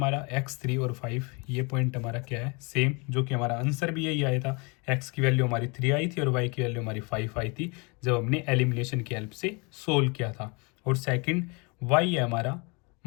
x3 और 5 ये पॉइंट हमारा क्या है सेम, जो कि हमारा आंसर भी यही आया था। x की वैल्यू हमारी 3 आई थी और y की वैल्यू हमारी 5 आई थी जब हमने एलिमिनेशन की हेल्प से सोल्व किया था। और सेकंड y है हमारा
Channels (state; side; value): quieter; right; 30.5 dB